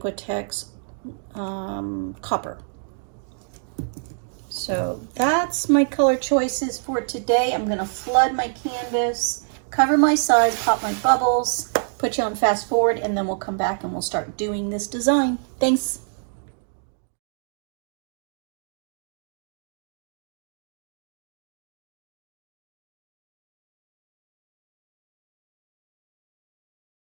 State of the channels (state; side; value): silent; left; digital silence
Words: copper. So that's my color choices for today. I'm gonna flood my canvas, cover my sides, pop my bubbles, put you on fast forward, and then we'll come back and we'll start doing this design. Thanks.